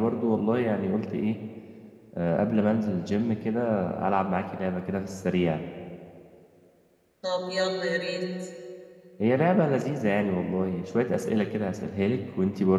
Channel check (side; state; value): both; identical; correlation 1.00